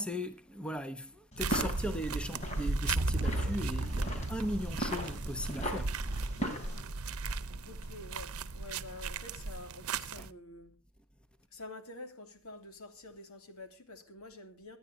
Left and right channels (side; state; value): both; normal; correlation 0.61